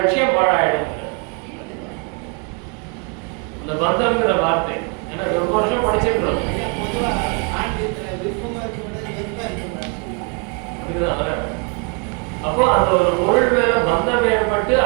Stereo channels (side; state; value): left; quieter; 34.7 dB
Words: பாழாயிடும். இந்த பந்தம்ங்கிற வார்த்தை ஏன்னா ரொம்ப வருஷம் படிச்சிருக்கிறோம். அப்போ அந்த ஒரு பொருள் மேல பந்தம் ஏற்பட்டு